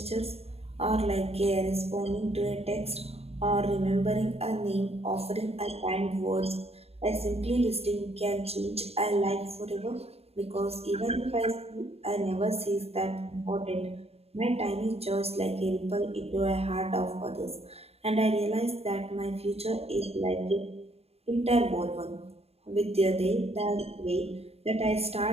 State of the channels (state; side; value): late; left; 0.29 ms